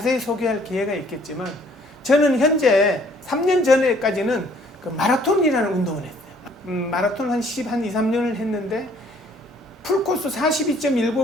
소개할 기회가 있겠지만 저는 현재 3년 전에까지는 그 마라톤이라는 운동을 했어요. 마라톤 한 2, 3년을 했는데 풀코스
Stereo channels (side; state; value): both; normal; correlation 0.60